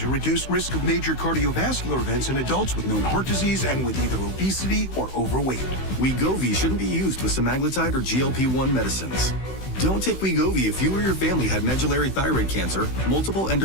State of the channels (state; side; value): late; right; 16 ms